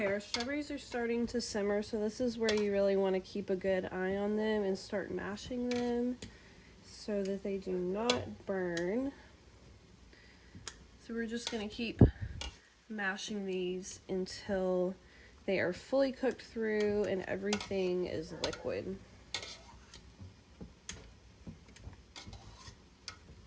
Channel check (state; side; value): identical; both; correlation 1.00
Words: our strawberries are starting to simmer, so this is where you really want to keep a good eye on them and start mashing them so that they do not burn. So we're just going to keep mashing these until they are fully cooked through and everything is liquid.